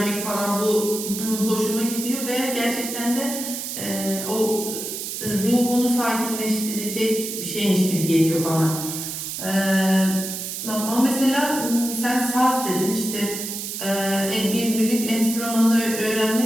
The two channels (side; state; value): right; noise; hiss, 6 dB below the sound